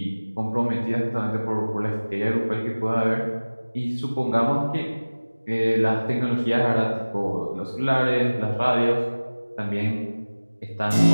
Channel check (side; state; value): both; inverted; correlation -1.00